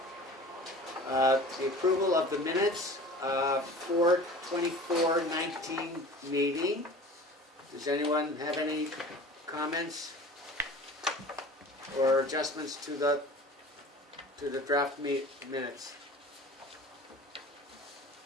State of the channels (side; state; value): both; normal; correlation 0.41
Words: The approval of the minutes for 24-19 meeting. Does anyone have any comments or adjustments to the draft minutes?